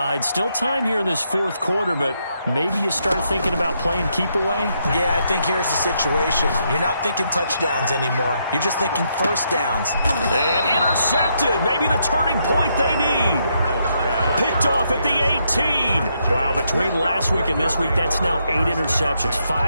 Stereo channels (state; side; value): inverted; both; correlation -0.77